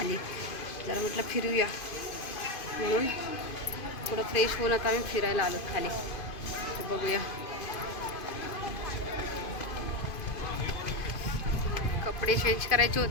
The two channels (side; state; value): right; late; 2.5 ms